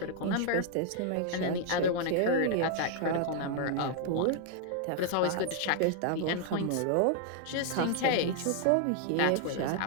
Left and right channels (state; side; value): different; both; correlation 0.00